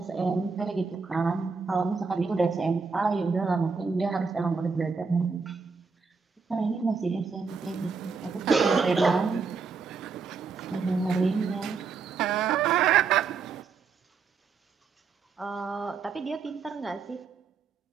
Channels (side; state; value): left; quieter; 5.0 dB